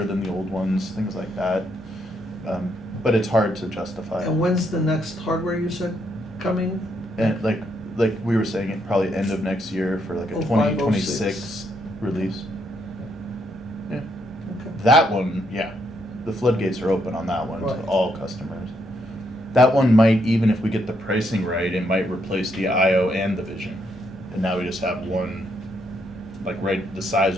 than the old ones, things like that. But it's hard to justify. And when's the next hardware you said coming? And like we were saying, it probably end of next year for like a 05, 2026 release. Yeah. Okay. That one, yeah, the floodgates are open on that one Right. to all customers. That one might, even if we get the pricing right, it might replace the IO and the Vision. And now we just have one, like the size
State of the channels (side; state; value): both; normal; correlation 0.76